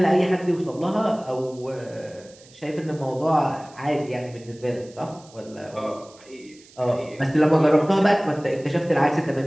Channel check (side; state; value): right; noise; hiss, 25 dB below the sound